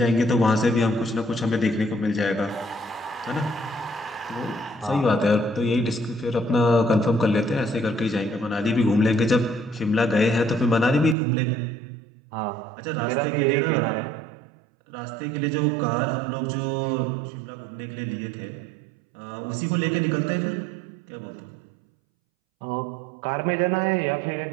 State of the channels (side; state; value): left; drops out; at 11.2 s